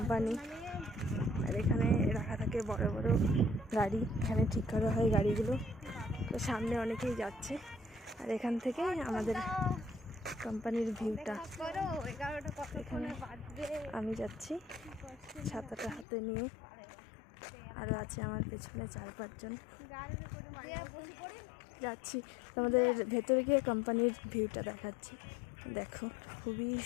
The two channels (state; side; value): drops out; right; at 16.1 s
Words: আর এখানে রাখা থাকে বড় বড় গাড়ি, এখানে ঠিক করা হয় গাড়িগুলো। তো সামনে অনেকেই যাচ্ছে, আর এখান থেকে আমাদের কোম্পানির ভিউটা। এখানে আমি যাচ্ছি ছাতাটা হাতে নিয়ে, আরও আছে আমার পেছনে 4-5 জন যাচ্ছি। আমাদের ভেতরে গিয়ে কোম্পানির ভিউটা দেখাচ্ছি, দেখো খুবই